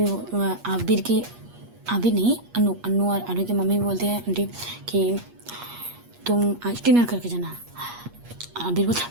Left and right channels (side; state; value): left; late; 8.4 ms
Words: आबिर नहीं, अन्नू और अनु की मम्मी बोलते हैं आंटी कि तुम आज डिनर करके जाना। आबिर